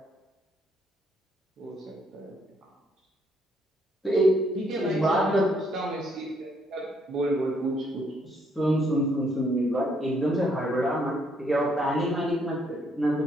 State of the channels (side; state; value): both; normal; correlation 0.71